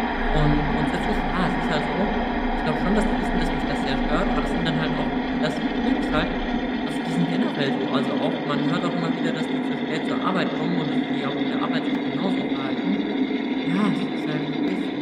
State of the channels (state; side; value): identical; both; correlation 1.00